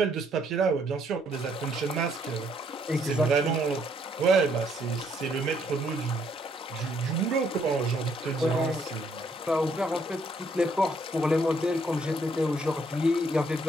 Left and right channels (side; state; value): both; normal; correlation 0.69